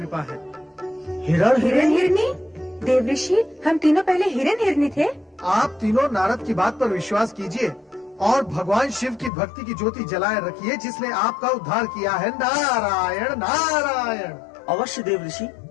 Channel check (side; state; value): right; drops out; at 9.3 s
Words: है। हिरण हिरणी? देवऋषि, हम तीनों पहले हिरण हिरणी थे। आप तीनों नारद की बात पर विश्वास कीजिए और भगवान शिव की भक्ति की ज्योति जलाए रखिए, जिसने आपका उद्धार किया है। नारायण नारायण। अवश्य देवऋषि,